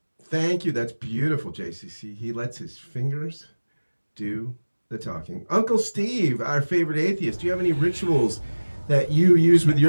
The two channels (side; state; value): both; inverted; correlation -1.00